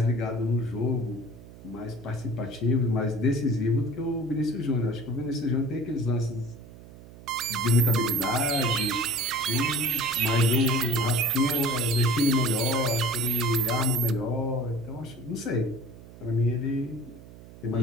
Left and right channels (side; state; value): right; noise; hum, 19 dB below the sound